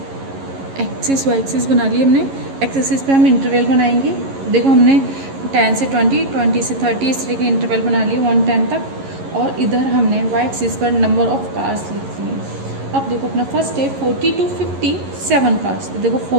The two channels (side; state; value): left; late; 11 ms